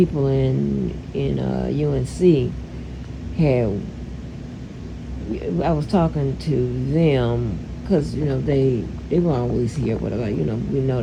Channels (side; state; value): both; identical; correlation 1.00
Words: in UNC had. I was talking to them because they were always here. Whatever, we know